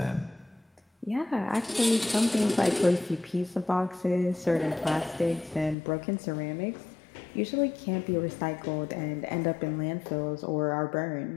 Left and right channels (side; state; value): right; drops out; at 5.8 s